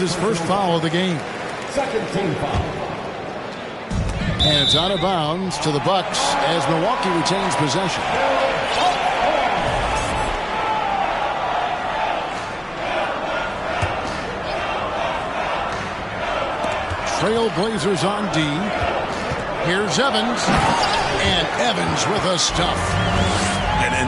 first foul of the game. Second team foul. And it's out of bounds to the Bucks as Milwaukee retains possession. Trailblazers on D. Here's Evans. And Evans with a stuff.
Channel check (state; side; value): identical; both; correlation 1.00